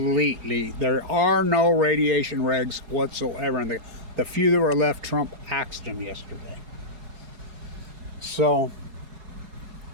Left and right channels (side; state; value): left; late; 4.8 ms